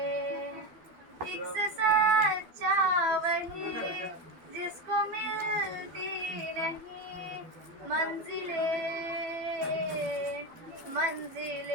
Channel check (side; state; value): left; late; 12 ms